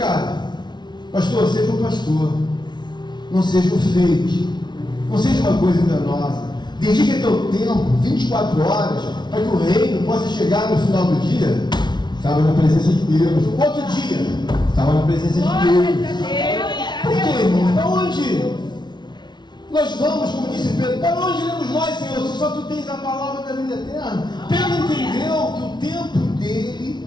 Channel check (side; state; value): right; late; 0.21 ms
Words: Pastor, seja um pastor. Não seja um fake. Não seja uma coisa enganosa. Dedique teu tempo, 24 horas, para que o reino possa chegar no final do dia. Estava na presença de Deus. Outro dia, estava na presença de Deus. Por quê, irmão? Para onde nós vamos, como disse Pedro? Para onde iremos nós, Senhor, se só tu tens a palavra da vida eterna? Pedro entendeu que o tempo dele